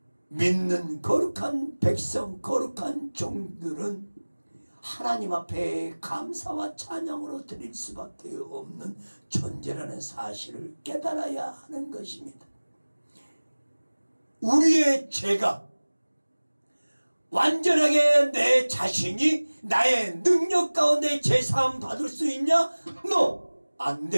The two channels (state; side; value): inverted; both; correlation -1.00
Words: 믿는 거룩한 백성, 거룩한 종들은 하나님 앞에 감사와 찬양으로 드릴 수밖에 없는 존재라는 사실을 깨달아야 하는 것입니다. 우리의 죄가 완전하게 내 자신이 나의 능력 가운데 제사함 받을 수 있냐? No! 안